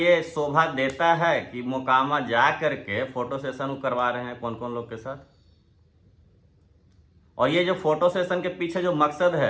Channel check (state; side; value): identical; both; correlation 1.00